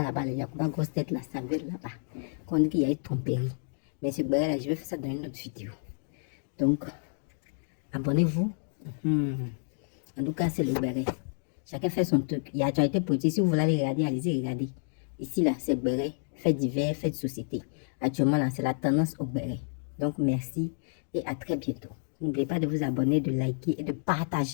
là-bas, les Yacouba grosse tête là, ça vient là-bas. Qu'on dit qu'il y a eu tromperie. Mais ce béret là, je vais faire ça dans une autre vidéo. Donc, abonnez-vous. En tout cas, c'est le béret. Chacun fait son truc. Il y a déjà été produit. Si vous voulez aller regarder, allez-y regarder. Ici là, c'est béret. Fait divers, fait de société. Actuellement là, c'est la tendance au béret. Donc, merci et à très bientôt. N'oubliez pas de vous abonner, de liker et de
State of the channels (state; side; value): silent; right; digital silence